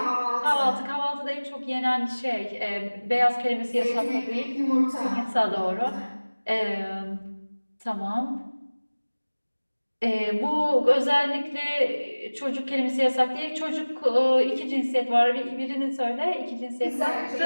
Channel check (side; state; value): both; inverted; correlation -1.00